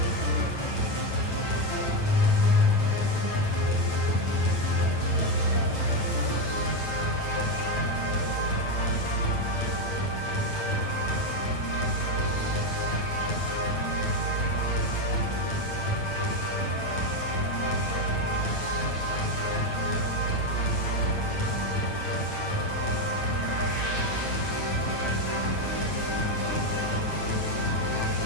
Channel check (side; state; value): right; late; 9.0 ms